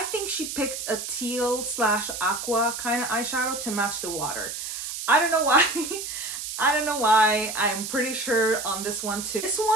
she picked a teal / aqua kind of eyeshadow to match the water. I don't know why. I don't know why. I'm pretty sure on this one too. This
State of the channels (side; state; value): right; noise; hiss, 6 dB below the sound